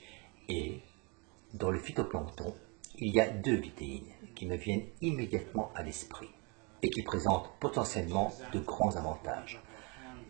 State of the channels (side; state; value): left; quieter; 31.1 dB